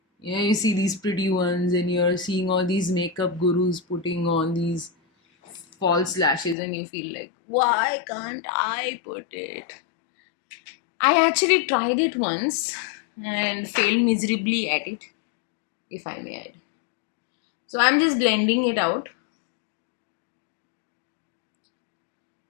see these pretty ones, and you're seeing all these makeup gurus putting on these false lashes, and you feel like, why can't I put it? I actually tried it once and failed miserably at it, if I may add. So I'm just blending it out.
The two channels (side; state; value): right; drops out; at 6.6 s